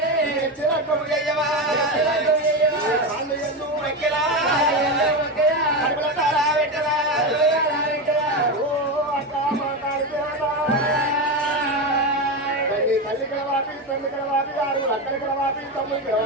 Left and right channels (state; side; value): normal; both; correlation 0.16